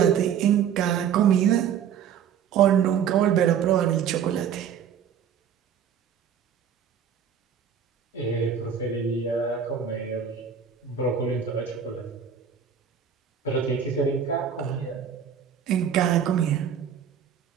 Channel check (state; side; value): quieter; left; 8.1 dB